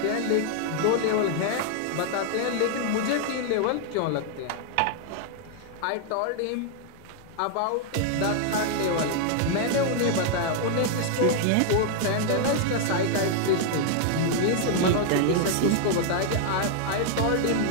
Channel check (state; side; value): different; both; correlation 0.00